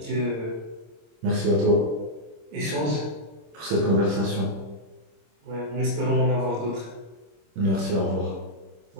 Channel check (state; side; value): late; left; 26 ms